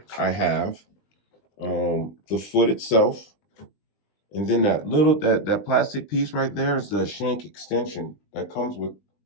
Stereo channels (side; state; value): right; late; 20 ms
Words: I have the foot itself. And then that plastic piece right there is the shank extension that comes with